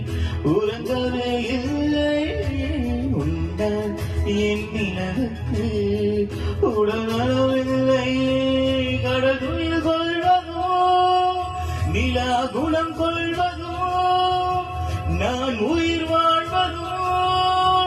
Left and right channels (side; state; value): both; identical; correlation 1.00